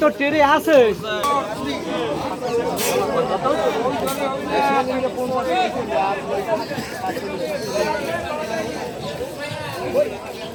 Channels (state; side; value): identical; both; correlation 1.00